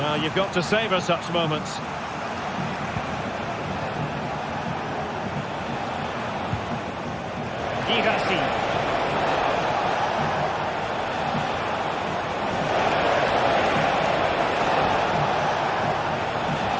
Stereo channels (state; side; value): identical; both; correlation 1.00